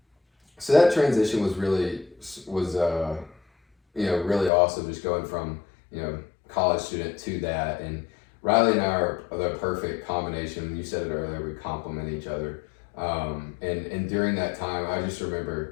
that transition was really really awesome, just going from, you know, college student to that. And Riley and I are the perfect combination. You said it earlier, we complement each other. And during that time, I just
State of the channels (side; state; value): right; drops out; at 4.5 s